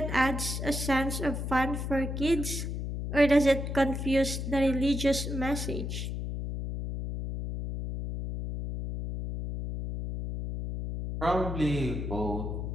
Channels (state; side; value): noise; left; hum, 4 dB below the sound